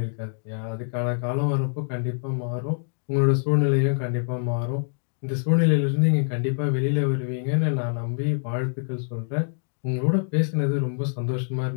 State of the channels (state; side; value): silent; right; 62 dB below the other